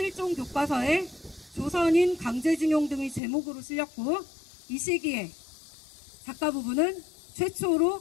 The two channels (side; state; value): right; drops out; at 3.2 s